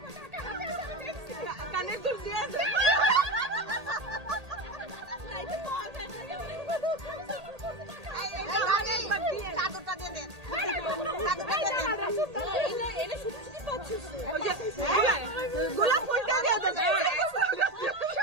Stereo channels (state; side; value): late; left; 1.8 ms